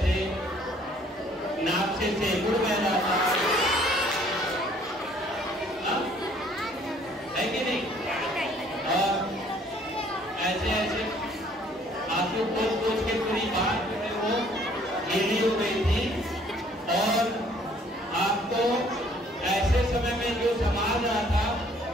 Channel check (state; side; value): normal; both; correlation 0.59